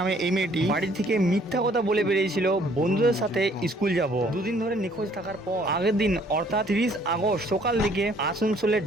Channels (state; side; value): normal; both; correlation 0.61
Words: এই মেয়েটি বাড়ি থেকে মিথ্যা কথা বলে বেরিয়েছিল বন্ধুদের সাথে স্কুল যাব। দুদিন ধরে নিখোঁজ থাকার পর আগের দিন অর্থাৎ 30 আগস্ট সকাল দিকে আসানসোলের